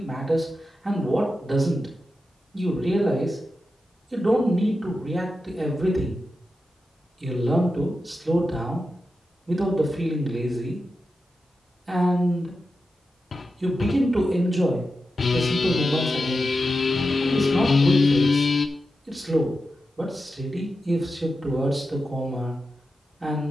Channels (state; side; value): normal; both; correlation 0.90